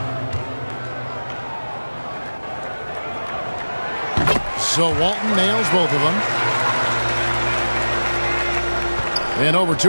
So Walton nails both of them. And over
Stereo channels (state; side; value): inverted; both; correlation -1.00